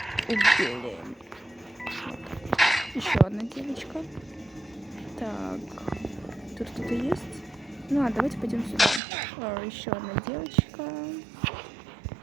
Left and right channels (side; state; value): left; drops out; at 9.0 s